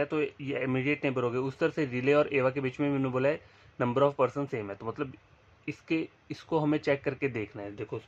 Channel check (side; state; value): both; identical; correlation 1.00